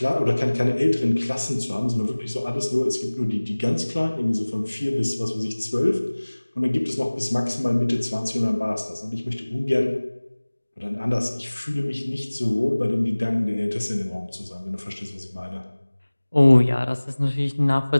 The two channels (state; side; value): inverted; both; correlation -1.00